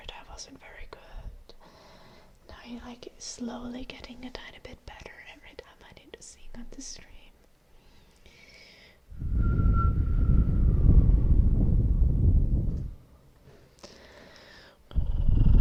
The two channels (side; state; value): both; identical; correlation 1.00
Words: I wasn't very good. Now you're like slowly getting a tiny bit better every time I need to sing on the stream.